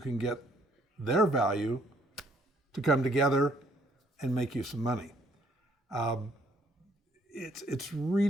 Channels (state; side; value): normal; both; correlation 0.65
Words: get their value to come together and make you some money. It's